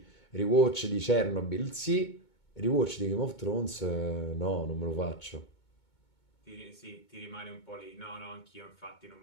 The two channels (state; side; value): late; right; 2.2 ms